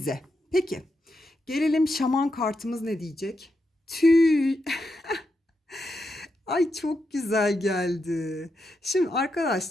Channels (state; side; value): normal; both; correlation 0.85